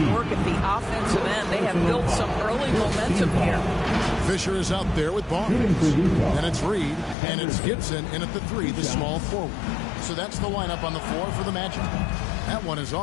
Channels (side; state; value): right; drops out; at 7.2 s